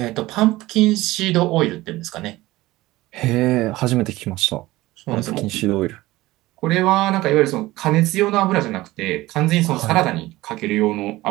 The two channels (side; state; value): left; quieter; 18.2 dB